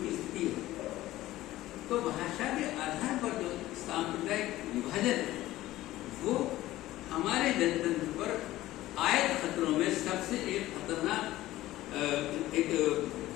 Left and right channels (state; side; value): quieter; right; 16.0 dB